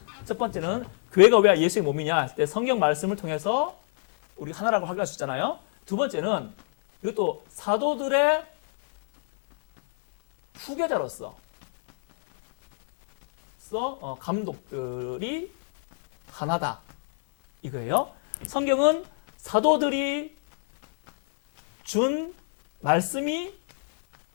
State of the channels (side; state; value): right; silent; 62 dB below the other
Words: 첫 번째는 교회가 왜 예수의 몸이냐 했을 때 성경 말씀을 통해서 우리 하나라고 확인할 수 있잖아요. 두 번째는 이것도 사도들의 후계자로서 감독들이 하나다 이거예요. 성경은 사도들이 준